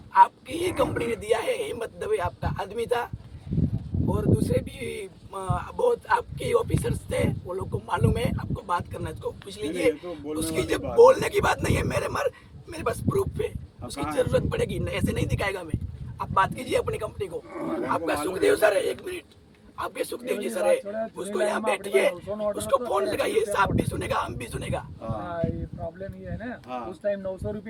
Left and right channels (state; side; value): identical; both; correlation 1.00